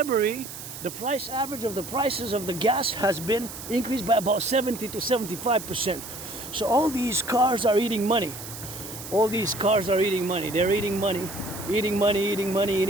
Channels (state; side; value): noise; right; hiss, 11 dB below the sound